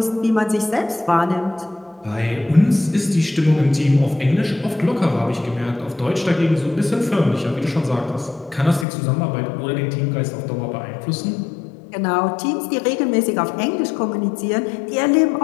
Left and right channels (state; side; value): drops out; right; at 8.8 s